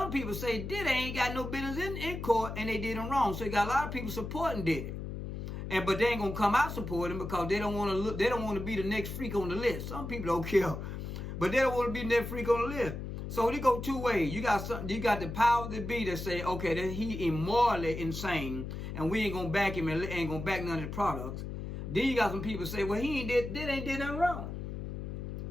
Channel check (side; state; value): left; noise; hum, 6 dB below the sound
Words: people say Diddy ain't got no business in court and they did him wrong. So you got a lot of people supporting Diddy. But they ain't gonna come out supporting him because they don't want to be the next freak on the list. Some people don't care. But they don't want to be that freak on the list. So they go two ways. You got the power to be that say, okay, that he immorally insane, and we ain't gonna back him and ain't gonna back none of his products. Then you got some people say, well, he ain't did nothing wrong.